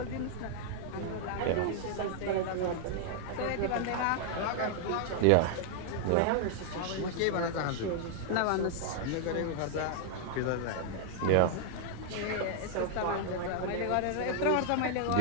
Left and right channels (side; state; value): both; different; correlation 0.00